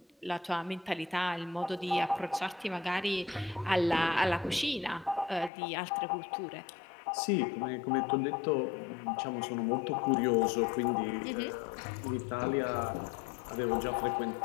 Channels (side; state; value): right; drops out; at 5.5 s